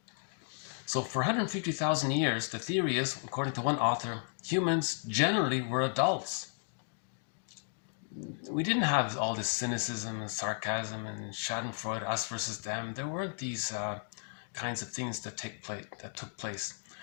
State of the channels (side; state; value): right; silent; 55 dB below the other